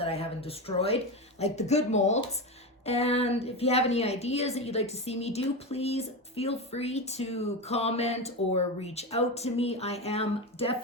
destroyed, like the good molds. And if you have any ideas that you'd like to see me do, please feel free to comment or reach out to me. I am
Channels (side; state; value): both; normal; correlation 0.18